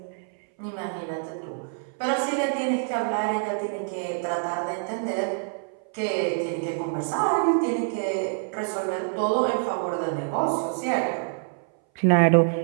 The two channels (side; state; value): left; silent; 59 dB below the other